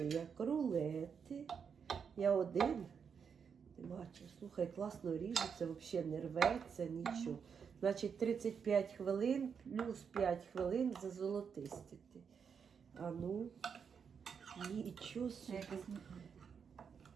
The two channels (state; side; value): quieter; left; 6.6 dB